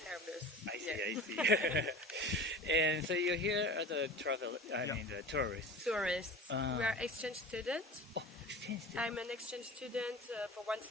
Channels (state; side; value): normal; both; correlation 0.36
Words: I see, Yes. I see. And so you're here as a the tourist. Tourists. We are exchange students. Oh, exchange student. I'm an exchange student for 1